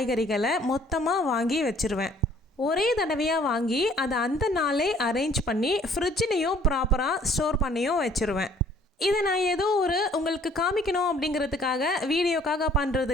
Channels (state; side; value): normal; both; correlation 0.58